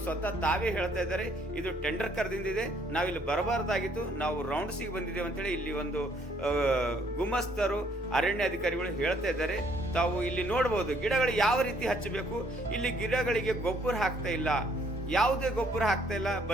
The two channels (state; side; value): normal; both; correlation 0.65